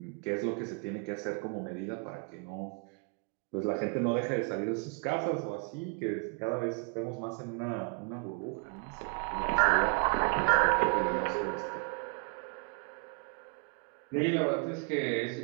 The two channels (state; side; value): quieter; left; 35.8 dB